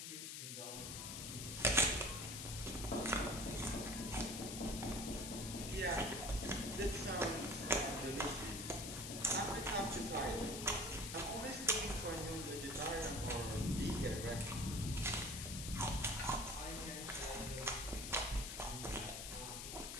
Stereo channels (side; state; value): left; noise; hiss, 6 dB below the sound